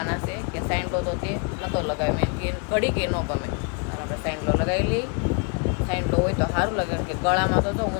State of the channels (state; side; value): quieter; right; 35.3 dB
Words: છે કે સાઈનલો તો તે નહોતો લગાવ્યો. મેં કે ઘડી કે ન ગમે, અને આપણે સાઈનલો લગાવી લઈએ. સાઈનલો હોય તો સારું લાગે, કે ગળામાં તો જો